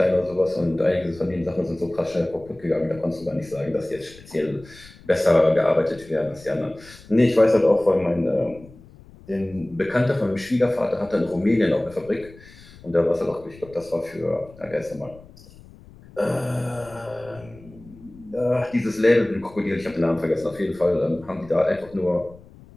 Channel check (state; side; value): noise; left; rumble, 22 dB below the sound